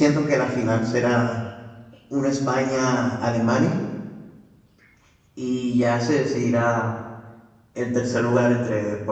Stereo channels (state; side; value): identical; both; correlation 1.00